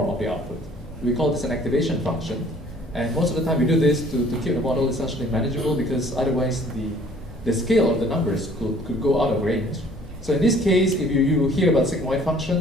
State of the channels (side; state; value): both; normal; correlation 0.55